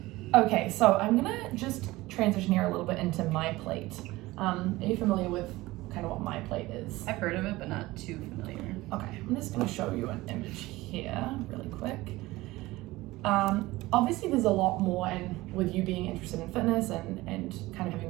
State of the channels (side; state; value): left; quieter; 19.1 dB